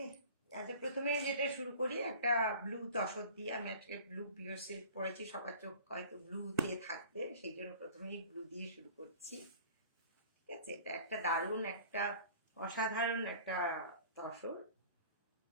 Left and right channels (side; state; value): both; inverted; correlation -0.45